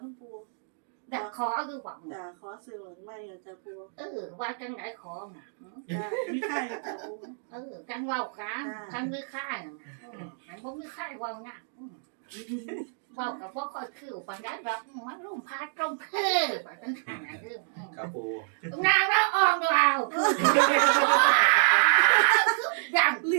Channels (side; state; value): left; silent; digital silence